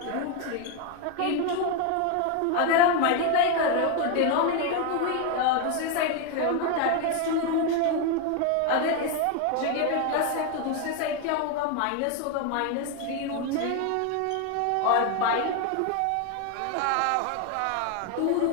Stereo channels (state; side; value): different; both; correlation 0.01